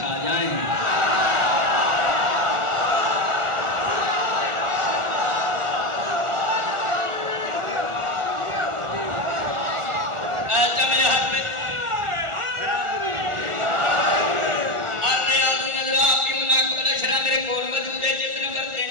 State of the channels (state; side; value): late; left; 1.4 ms